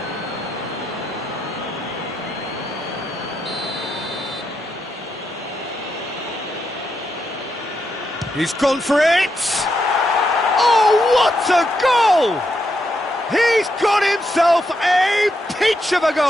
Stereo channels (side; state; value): both; normal; correlation 0.82